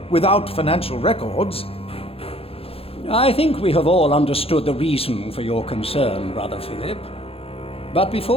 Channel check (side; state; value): right; late; 0.28 ms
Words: without financial records. I think we have all understood the reason for your concern, Brother Philip. But